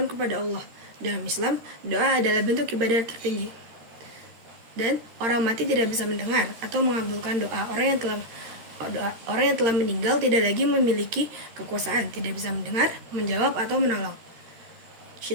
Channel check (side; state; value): left; late; 13 ms